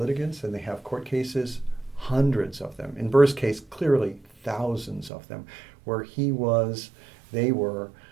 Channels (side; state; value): left; drops out; at 5.1 s